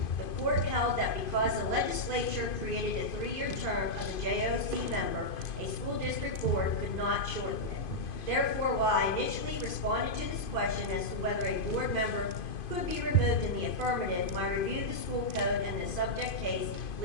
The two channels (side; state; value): right; late; 2.5 ms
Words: The court held that because the legislature created a 3-year term of the JOC member, a school district board could not shorten it. Therefore, while I initially responded to this question as to whether a board member could be removed in the affirmative, my review of the school code and the subject case